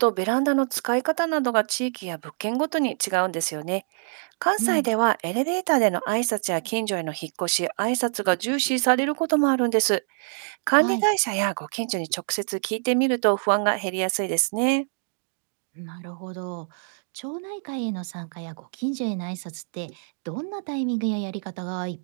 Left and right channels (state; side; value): silent; left; digital silence